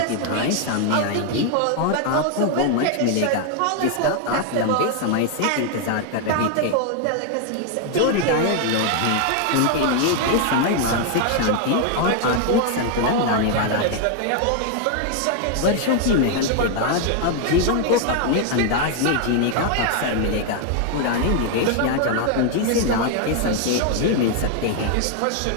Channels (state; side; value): different; both; correlation 0.00